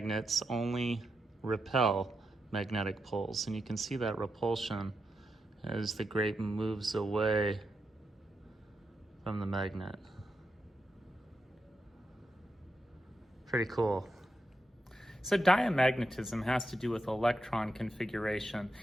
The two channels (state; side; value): normal; both; correlation 0.86